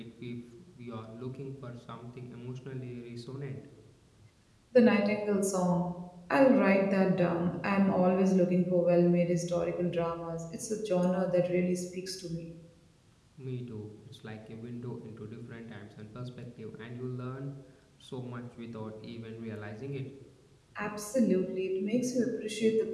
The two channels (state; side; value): identical; both; correlation 1.00